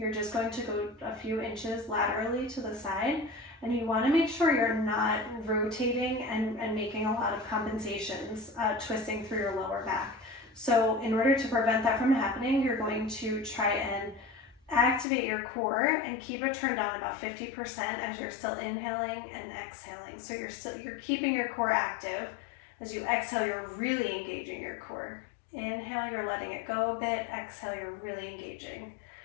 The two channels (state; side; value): drops out; right; at 15.1 s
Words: just going to go a few inches laterally to the side, and you want to make sure you're not rotating and making a lot of compensations, twisting through your lower back. So in order to prevent that from happening, you're going to try and activate your core and keep it turned on about 50% as you're still inhaling and exhaling. So you're keeping your core active. As you exhale, you're really engaging your core. Inhale, you're letting it go a bit. Exhale, you're really engaging.